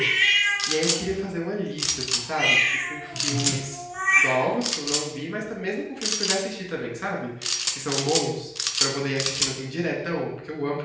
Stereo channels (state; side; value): identical; both; correlation 1.00